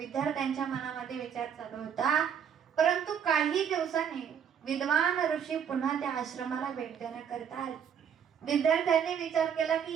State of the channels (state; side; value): quieter; left; 8.0 dB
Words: मनामध्ये विचार चालू होता. परंतु काही दिवसांनी विद्वान ऋषी पुन्हा त्या आश्रमाला भेट देण्याकरिता आले. विद्यार्थ्यांनी विचार केला